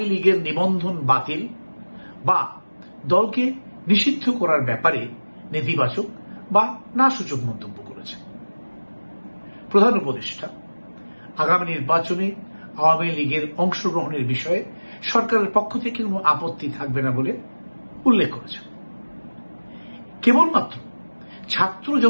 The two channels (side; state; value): both; inverted; correlation -1.00